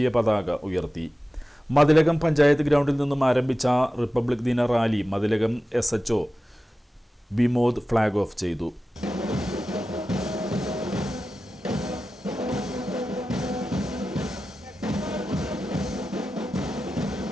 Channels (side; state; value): both; normal; correlation 0.94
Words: പതാക ഉയർത്തി. മതിലകം പഞ്ചായത്ത് ഗ്രൗണ്ടിൽ നിന്നും ആരംഭിച്ച റിപ്പബ്ലിക് ദിന rally Mathilakam SHO Vimod flag off ചെയ്തു.